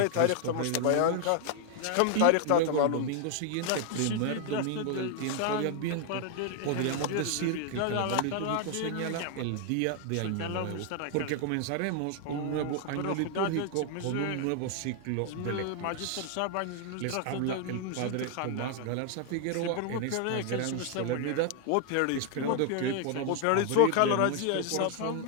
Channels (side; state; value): both; different; correlation 0.00